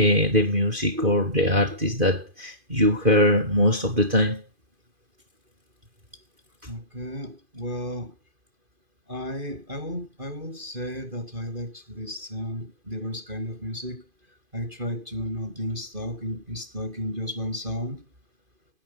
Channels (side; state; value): left; late; 2.5 ms